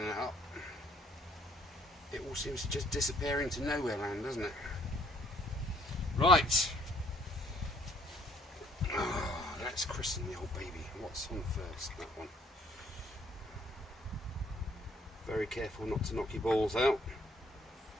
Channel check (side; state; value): both; normal; correlation 0.63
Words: up, it all seems to just disappear into nowhere land, doesn't it? Right. Oh, let's christen the old baby. What's on first? That one. Very careful not to knock your balls out.